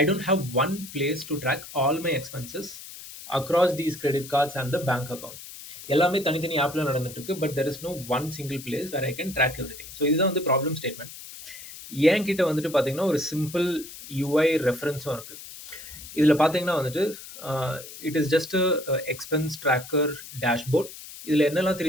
don't have one place to track all my expenses across these credit cards and the bank account. எல்லாமே தனித்தனி ஆப்பில் நடந்துட்டு இருக்கு. But there is no one single place where I can track everything. So இதுதான் வந்து problem statement. என்கிட்ட வந்துட்டு பார்த்தீங்கன்னா ஒரு சிம்பிள் யூஐ ரெஃபரன்ஸும் இருக்குது. இதில் பார்த்தீங்கன்னா வந்துட்டு it is just expense tracker dashboard. இதில் என்னெல்லாம்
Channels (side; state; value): left; noise; hiss, 14 dB below the sound